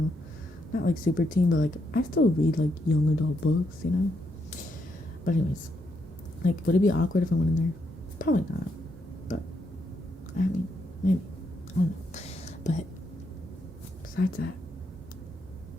Not like super teen, but like I still read like young adult books, you know? But anyways, like would it be awkward if I went in there? Probably not. But I mean, maybe. I don't know. But besides that,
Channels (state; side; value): normal; both; correlation 0.78